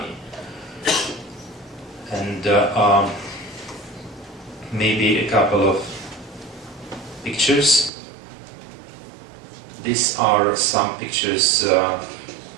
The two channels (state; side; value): drops out; left; at 7.9 s